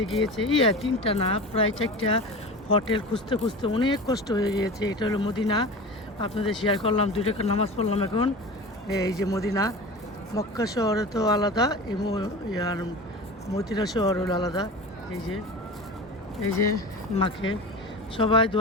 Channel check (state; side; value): normal; both; correlation 0.32